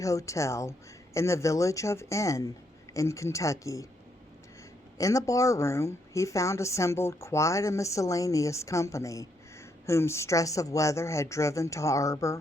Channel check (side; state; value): both; normal; correlation 0.76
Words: in the village of N in Kentucky. In the barroom he found assembled quite a miscellaneous company, whom stress of weather had driven to